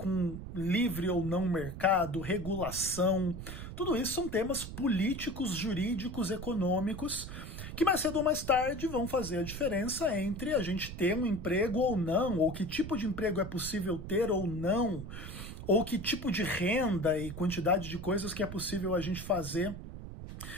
livre ou não mercado, regulação. Tudo isso são temas políticos, jurídicos, econômicos, que mais cedo ou mais tarde vão fazer a diferença entre a gente ter um emprego ou não, ou que tipo de emprego é possível ter ou não, ou que tipo de renda e quantidade de coisas que é possível a gente fazer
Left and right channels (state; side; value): noise; right; rumble, 9 dB below the sound